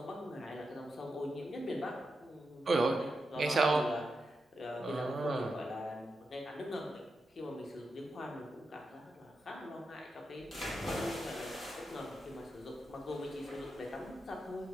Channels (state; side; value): normal; both; correlation 0.87